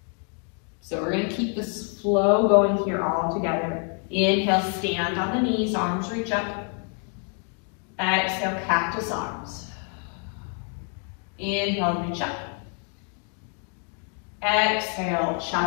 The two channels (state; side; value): quieter; right; 38.9 dB